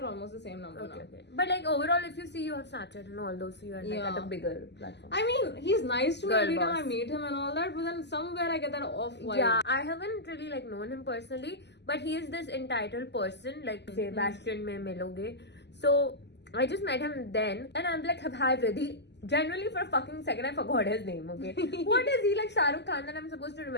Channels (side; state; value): right; late; 0.50 ms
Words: almost the same number now. Okay. But like overall, if you see you have Snapchat and all those, so you are like at a bigger platform. I mean, he's nice to me every time I meet him and all that, but then somewhere I get that off vibe. Yeah, I haven't really like known him personally, but he is this entitled person, like say Bastion mein miloge. So I just met him then, and I'm like, hi VRIDDHI. Generally for a fucking second I forgot his name, okay? What is he like Shah Rukh Khan that I'm supposed to